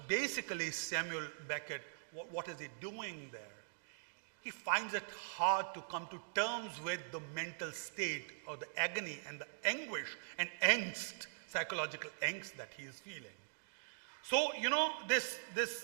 basically Samuel Beckett, what is he doing there? He finds it hard to come to terms with the mental state or the agony and the anguish and angst, psychological angst that he is feeling. So, you know, this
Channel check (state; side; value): silent; left; digital silence